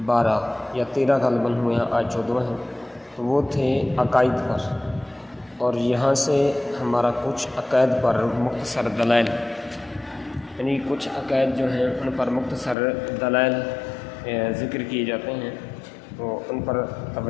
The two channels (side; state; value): right; drops out; at 12.8 s